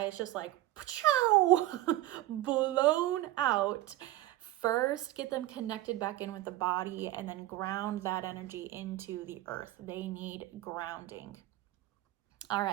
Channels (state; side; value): quieter; left; 15.7 dB